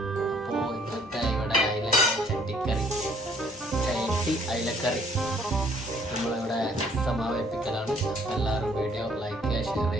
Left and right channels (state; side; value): normal; both; correlation 0.61